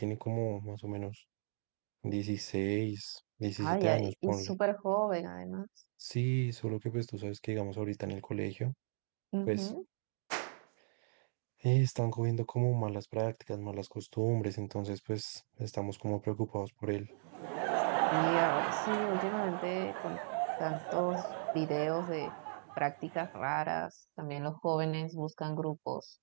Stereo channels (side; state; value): left; silent; digital silence